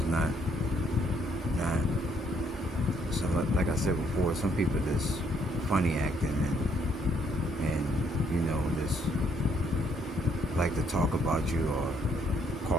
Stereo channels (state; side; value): normal; both; correlation 0.69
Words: not. So like I said before, some people just funny acting and you know just like to talk about you or